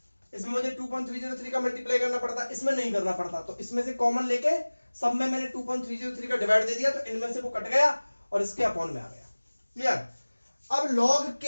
इसमें मुझे 2.303 का मल्टीप्लाई करना पड़ता, इसमें नहीं करना पड़ता। तो इसमें से कॉमन लेके सब में मैंने 2.303 का डिवाइड दे दिया, तो इनमें से वो कट गया और इसके अपॉन में आ गया। क्लियर? अब log K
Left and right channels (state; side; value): inverted; both; correlation -1.00